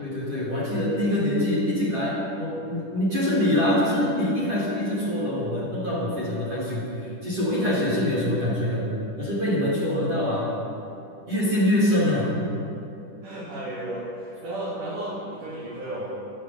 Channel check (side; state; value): left; late; 10 ms